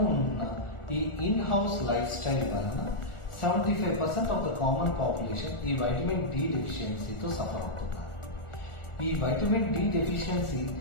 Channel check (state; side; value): late; right; 1.4 ms